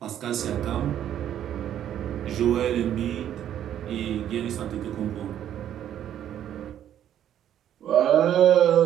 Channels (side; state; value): left; quieter; 10.6 dB